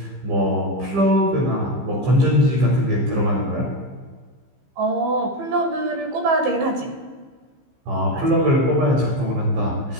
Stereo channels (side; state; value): left; late; 15 ms